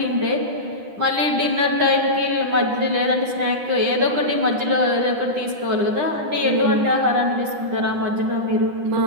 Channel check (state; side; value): late; left; 9.9 ms